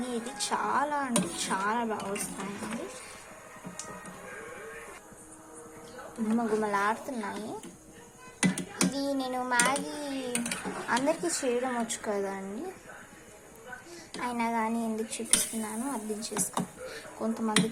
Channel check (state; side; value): identical; both; correlation 1.00